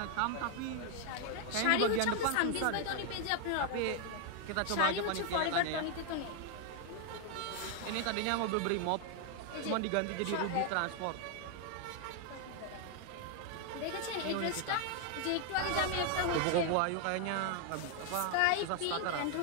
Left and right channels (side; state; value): both; different; correlation 0.00